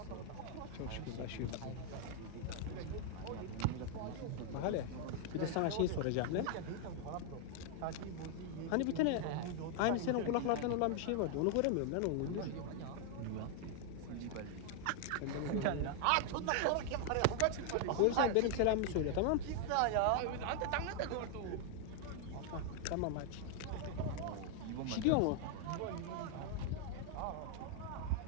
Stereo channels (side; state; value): both; different; correlation 0.00